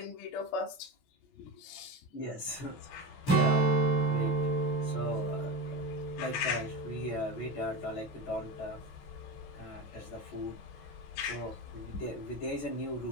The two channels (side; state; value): right; late; 16 ms